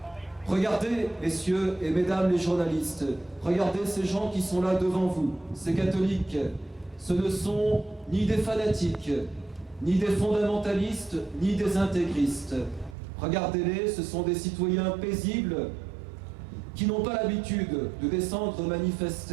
Regardez, messieurs et mesdames les journalistes, regardez ces gens qui sont là devant vous, ces catholiques. Ce ne sont ni des fanatiques, ni des fondamentalistes, ni des intégristes. Regardez-les, ce sont des citoyens paisibles qui n'ont pas l'habitude de descendre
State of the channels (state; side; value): drops out; left; at 13.0 s